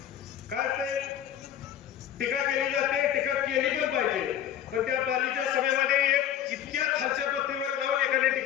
काय ते टीका केली जाते, टीका केली पण पाहिजे. पण त्या पालीच्या सभेमध्ये एक इतक्या खालच्या पत्तीवर जाऊन एकाने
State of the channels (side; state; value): right; quieter; 10.3 dB